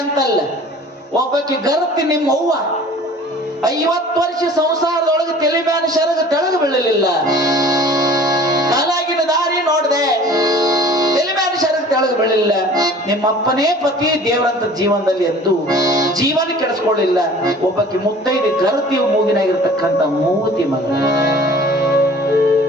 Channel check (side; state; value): both; normal; correlation 0.47